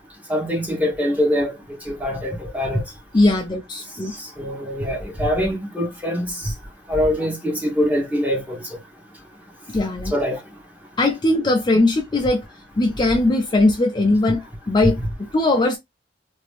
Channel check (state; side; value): normal; both; correlation 0.72